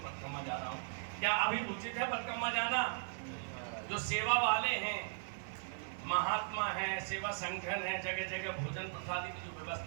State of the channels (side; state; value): left; silent; digital silence